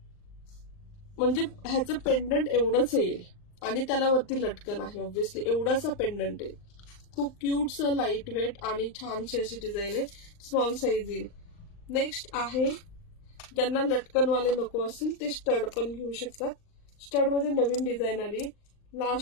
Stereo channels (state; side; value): late; right; 39 ms